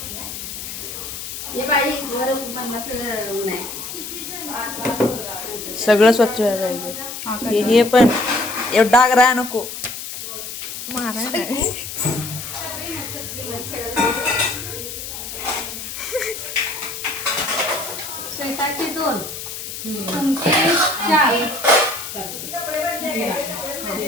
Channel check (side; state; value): left; noise; hiss, 8 dB below the sound